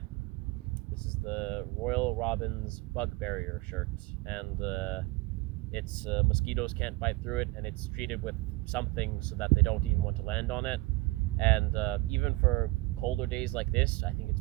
is the Royal Robins Bug Barrier shirt, and it's mosquitoes can't bite through it, and it's treated with something so that they don't even want to land on it. And even for colder days like this, I think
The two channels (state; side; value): quieter; left; 21.8 dB